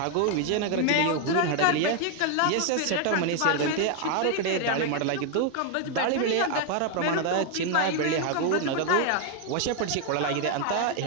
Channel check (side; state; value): both; different; correlation 0.00